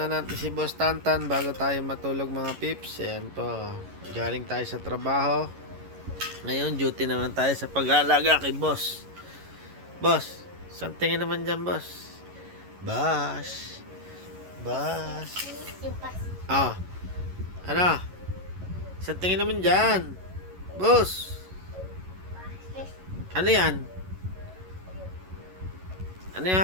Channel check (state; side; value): late; left; 11 ms